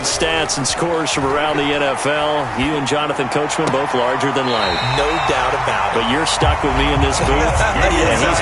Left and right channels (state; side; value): identical; both; correlation 1.00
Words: stats and scores from around the NFL. You and Jonathan Coachman both larger than life. No doubt about it. But you're stuck with me in this booth. Yes, and he's